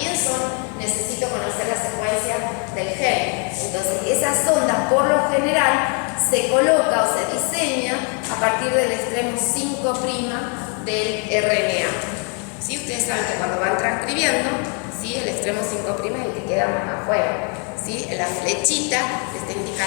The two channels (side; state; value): right; quieter; 38.5 dB